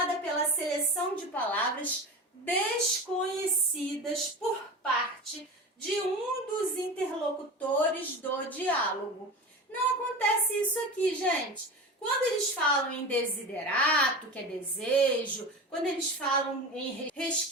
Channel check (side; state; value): both; normal; correlation 0.29